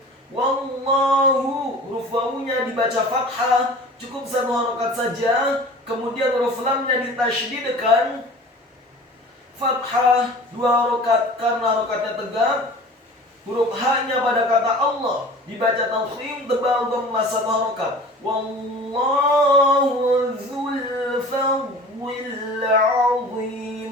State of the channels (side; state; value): both; normal; correlation 0.41